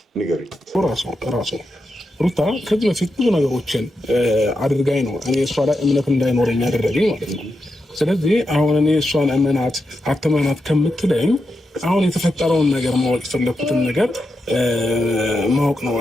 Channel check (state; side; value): normal; both; correlation 0.87